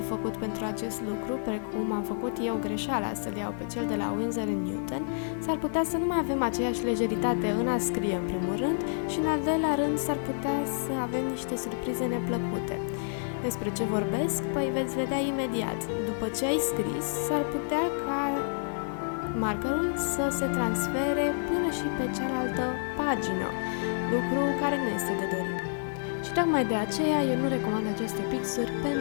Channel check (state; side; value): silent; right; digital silence